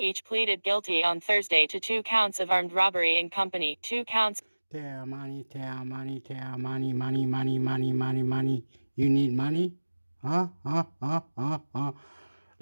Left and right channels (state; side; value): inverted; both; correlation -1.00